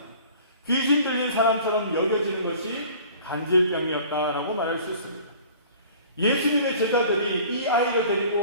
귀신 들린 사람처럼 여겨지는 것이 간질병이었다라고 말할 수 있습니다. 예수님의 제자들이 이 아이를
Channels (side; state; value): both; inverted; correlation -0.47